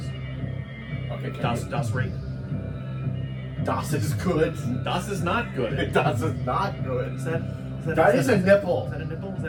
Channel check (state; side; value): identical; both; correlation 1.00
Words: Okay, can Das rape. Das is good. Das is not good. Das is not good. Is that That is a nipple. Is that a nipple? Is